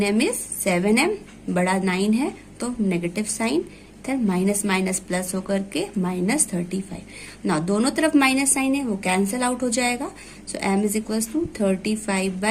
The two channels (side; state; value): both; identical; correlation 1.00